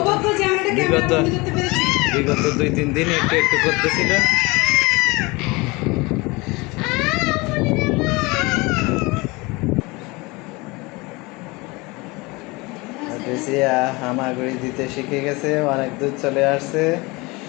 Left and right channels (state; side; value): quieter; right; 24.6 dB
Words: বিগত বিগত 2-3 দিন একটু একটু করতেছিল। হামাগুড়ি দিতে শিখে গেছে, অনেক দূর চলে আসছে।